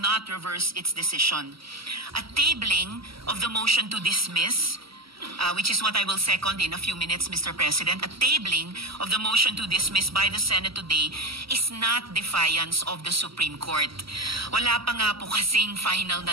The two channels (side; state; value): left; late; 0.75 ms